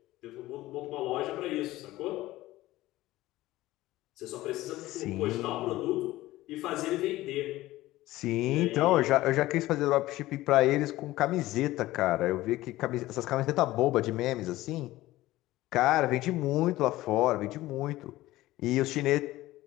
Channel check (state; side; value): quieter; right; 16.9 dB